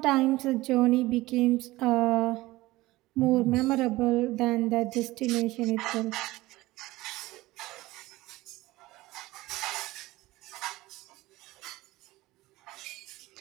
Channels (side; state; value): left; quieter; 18.7 dB